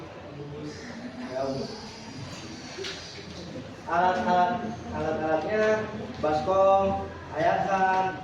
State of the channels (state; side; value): identical; both; correlation 1.00